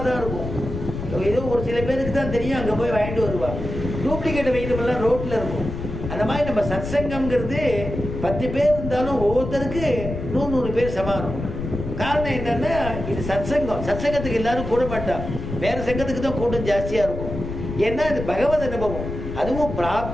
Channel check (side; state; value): left; noise; rumble, 7 dB below the sound